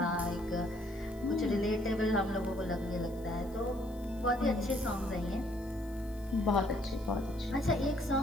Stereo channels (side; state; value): left; noise; hiss, 26 dB below the sound